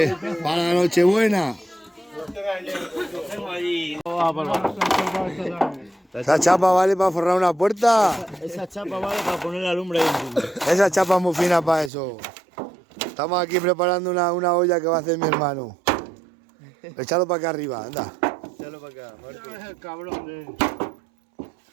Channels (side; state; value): left; drops out; at 11.9 s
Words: para la noche buena. Esa chapa vale para forrar una puerta. Esa chapa vale para poner la lumbre ahí encima. Esa chapa es muy fina para eso. Estamos aquí preparando una olla que va a hacer mi hermano. Echalo para acá arriba, anda. Échalo para acá, Marco. Es el cabrón de...